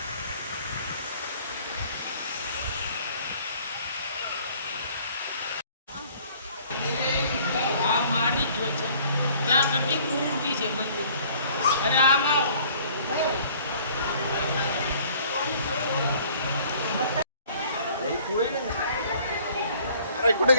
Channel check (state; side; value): inverted; both; correlation -0.55